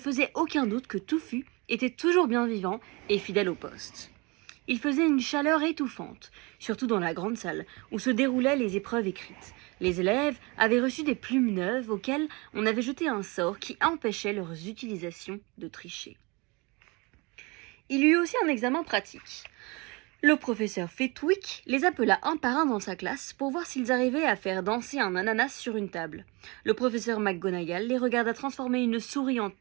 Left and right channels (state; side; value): quieter; left; 27.0 dB